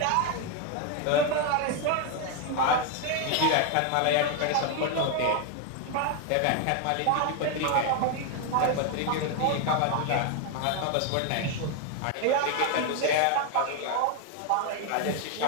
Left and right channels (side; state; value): both; different; correlation 0.01